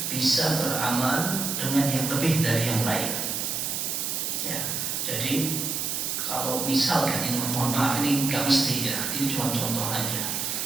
bisa beramal dengan yang lebih dari yang lain. Ya, jadi kalau misalkan ini, mohon maaf ini nggak mesti ya, ini cuma contoh aja.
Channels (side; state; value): right; noise; hiss, 1 dB below the sound